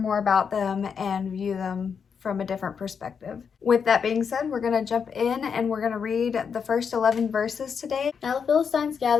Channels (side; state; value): right; quieter; 6.5 dB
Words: more about them and view them from a different perspective. With that being said, we're going to jump in and we're going to read the first 11 verses today. Now the Philistines